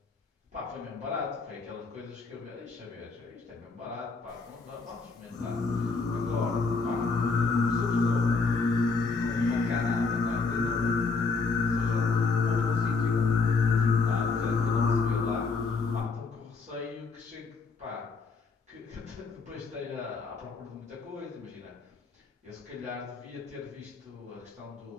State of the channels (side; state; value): right; quieter; 4.4 dB